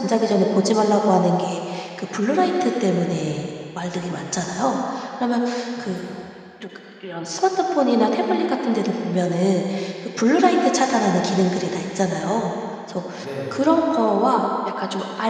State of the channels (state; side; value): identical; both; correlation 1.00